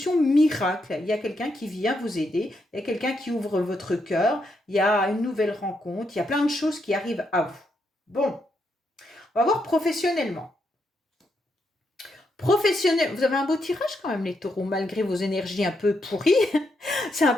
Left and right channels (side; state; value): both; normal; correlation 0.80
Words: miracle. Il y a quelqu'un qui vient vous aider, il y a quelqu'un qui ouvre votre cœur, il y a une nouvelle rencontre, il y a plein de choses qui arrivent à vous. Bon, on va voir professionnellement. Professionnel, vous avez un beau tirage quand même les taureaux, malgré vos énergies un peu pourries. C'est un